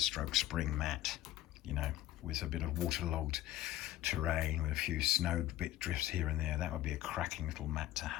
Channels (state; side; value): quieter; right; 14.5 dB